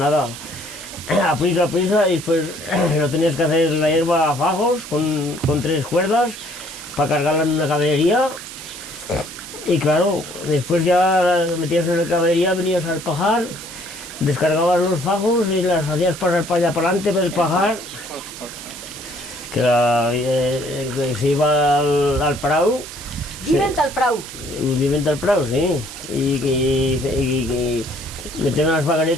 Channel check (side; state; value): right; noise; hiss, 13 dB below the sound